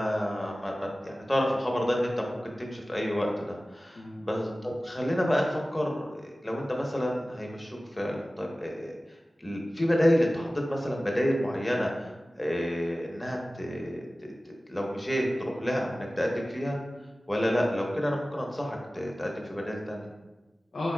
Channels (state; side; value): normal; both; correlation 0.97